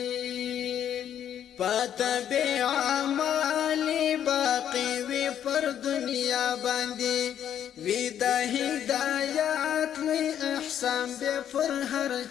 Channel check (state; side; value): quieter; right; 9.8 dB